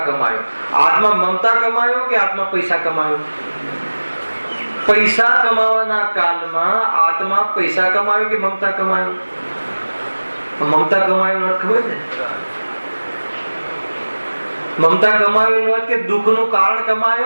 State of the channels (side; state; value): both; inverted; correlation -1.00